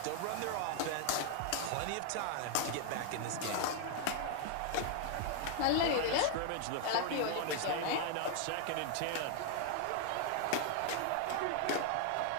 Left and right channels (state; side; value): different; both; correlation 0.00